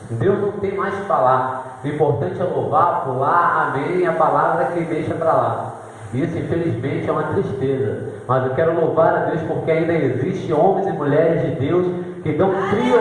Deus não tem mais que falar. O importante é louvar, pular, amém, a palavra que deixa para lá. Isso infelizmente é uma tristeza. Mas eu quero louvar a Deus porque ainda existem homens e mulheres de Deus que dão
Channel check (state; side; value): identical; both; correlation 1.00